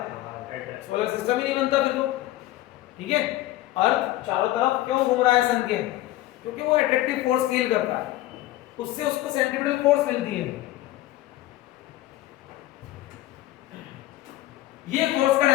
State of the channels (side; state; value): right; quieter; 15.9 dB